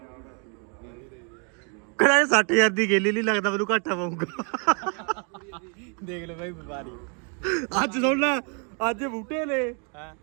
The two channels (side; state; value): left; quieter; 38.0 dB